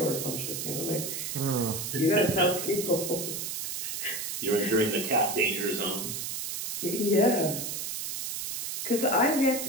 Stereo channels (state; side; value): noise; right; hiss, 4 dB below the sound